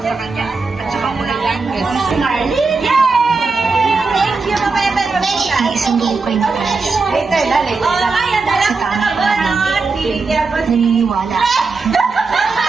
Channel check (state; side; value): quieter; left; 4.1 dB